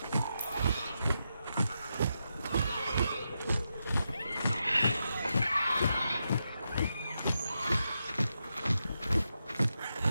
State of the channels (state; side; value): inverted; both; correlation -0.86